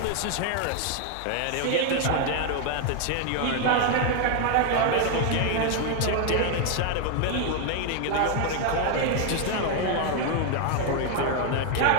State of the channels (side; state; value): both; different; correlation 0.00